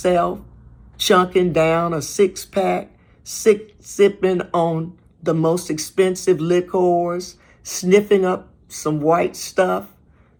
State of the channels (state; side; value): identical; both; correlation 1.00